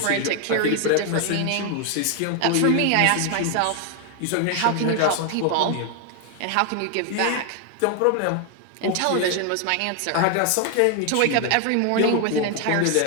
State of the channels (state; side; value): different; both; correlation 0.00